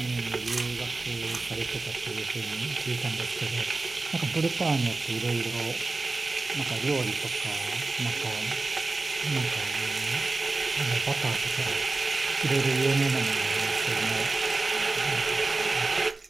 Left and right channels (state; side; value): quieter; left; 3.4 dB